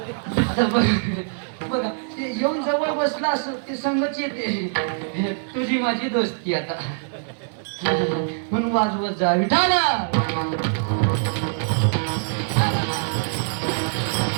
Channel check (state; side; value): silent; left; 61 dB below the other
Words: आता बघा ते येऊन जवळ बसला असं ते संगच येते. तुझी माझी दोस्ती आता म्हणून वाजवत जा विठाला.